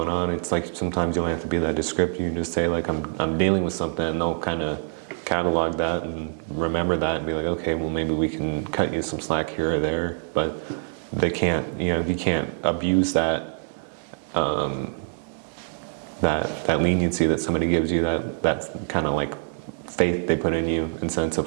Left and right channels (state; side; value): silent; left; 60 dB below the other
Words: on, it's like sometimes you don't have to be that descriptive. You can just say like I'm dealing with something, and they'll kind of catalog that and remember that and be like, okay, well maybe we can cut you some slack here or there. But they can't, you know, you can't abuse that that leniency that somebody gives you, that's kind of like faith they put in you in sense